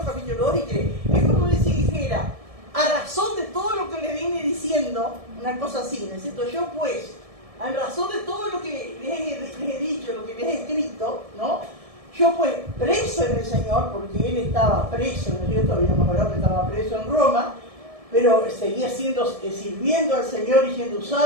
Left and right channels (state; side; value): late; left; 1.7 ms